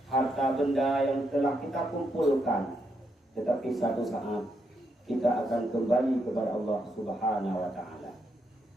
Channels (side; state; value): both; normal; correlation 0.79